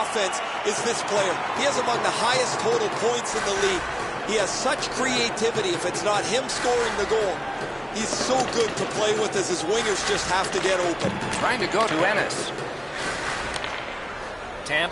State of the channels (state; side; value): identical; both; correlation 1.00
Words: is this player. He has among the highest total points in the league. He has such creativity. If it's not him scoring the goal, he's so good to play with as his wingers just have to get open. Trying to go to Ennis.